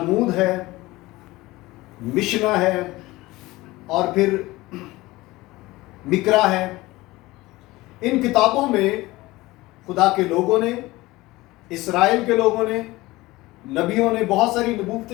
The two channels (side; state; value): right; quieter; 19.7 dB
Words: ہے، مشنا ہے، اور پھر مکرا ہے، ان کتابوں میں خدا کے لوگوں نے، اسرائیل کے لوگوں نے، نبیوں نے بہت ساری